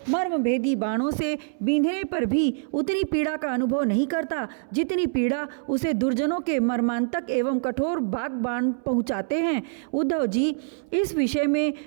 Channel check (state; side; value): silent; left; 62 dB below the other